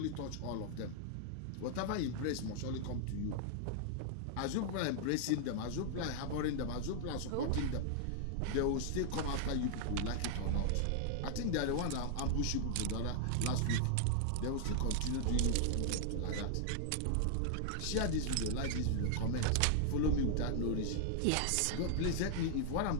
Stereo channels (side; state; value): both; different; correlation 0.00